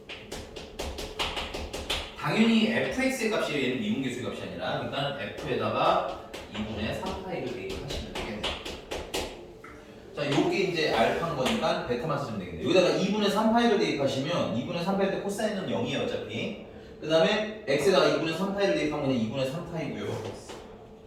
당연히 fx의 값이 얘는 미분계수의 값이 아니라 일단 f에다가 2분의 3파이를 대입하시면 되겠네요. 자, 요게 이제 알파인 거니까 베타만 쓰시면 되겠네요. 여기다가 2분의 3파이를 대입하시면 2분의 3파일 때 코사인은 0이에요 어차피. 그 다음에 x에다가 2분의 3파이를 대입하면 그냥 2분의 3파이고요.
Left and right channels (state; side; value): identical; both; correlation 1.00